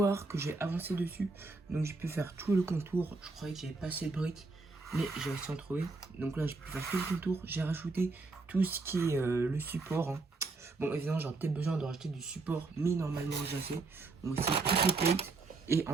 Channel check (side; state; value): left; quieter; 3.7 dB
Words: que j'ai avancé dessus. Donc j'ai pu faire tout le contour. Je croyais que j'avais pas assez de briques, mais j'ai réussi à en trouver. Donc là, j'ai pu faire tout le contour. J'ai rajouté tout ce qui est le support, hein. Bon, évidemment, j'aurais peut-être besoin de rajouter du support, mais normalement, j'ai assez. Donc aussi toutes les plates. Et